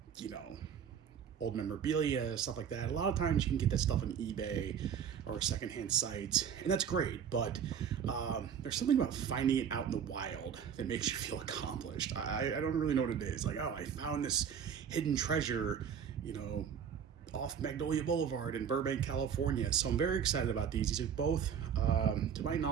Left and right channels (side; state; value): left; quieter; 7.8 dB